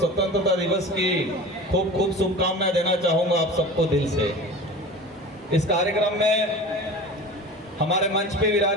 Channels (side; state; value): both; normal; correlation 0.35